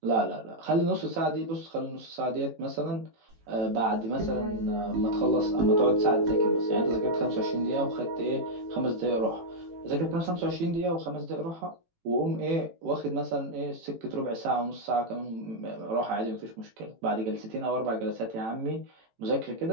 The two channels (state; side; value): late; left; 18 ms